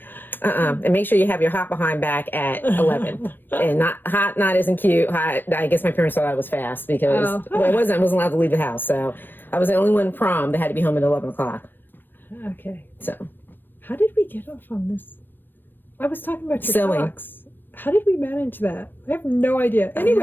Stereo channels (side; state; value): right; late; 0.094 ms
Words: make sure you have your hot behind back at 11, and not isn't cute. Hot. I guess my parents thought I was fast because I wasn't allowed to leave the house. So I was the only one prom that had to be home at 11 o'clock. Okay. So how did we get off on this? I was talking about your sewing. socks. How did we manage that? I have no idea.